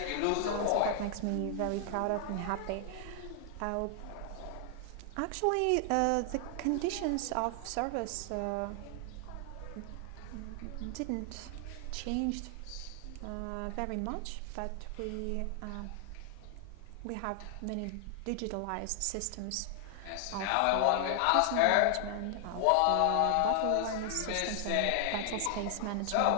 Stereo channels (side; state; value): both; different; correlation 0.00